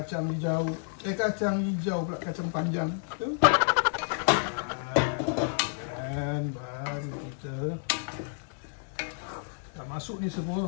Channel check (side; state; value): right; silent; 58 dB below the other